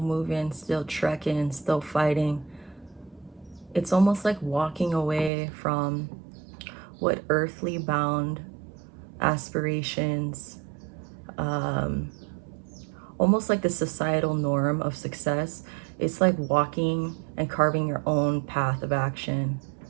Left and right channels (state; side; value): drops out; left; at 5.3 s